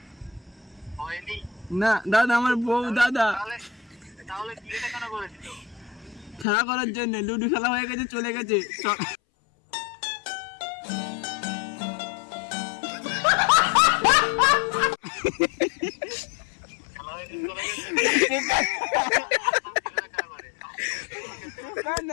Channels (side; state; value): right; drops out; at 6.5 s